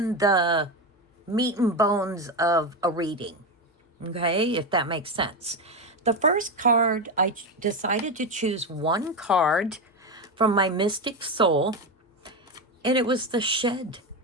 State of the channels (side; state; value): both; normal; correlation 0.14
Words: the meat and bones of a reading, okay, if that makes sense. The first card, I decided to choose one card from my Mystic Soul, and it was the shed